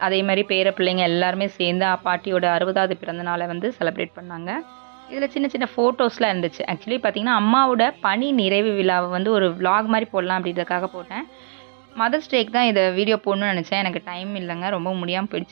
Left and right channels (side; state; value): left; silent; digital silence